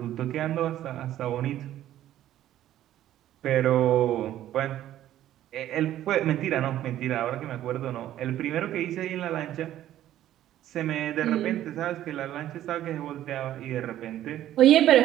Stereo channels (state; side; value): quieter; left; 12.7 dB